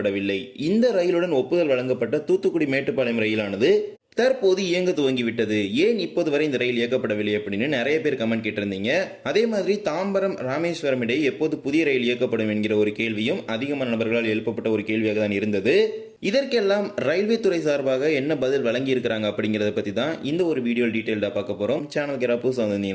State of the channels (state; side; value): identical; both; correlation 1.00